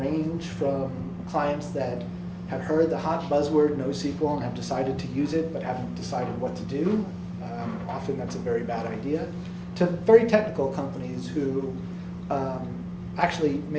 from clients that have heard the hot buzzword NoSQL and have decided to use it but haven't decided what to do. Often that's a very bad idea. To very technical companies who actually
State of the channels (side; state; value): both; identical; correlation 1.00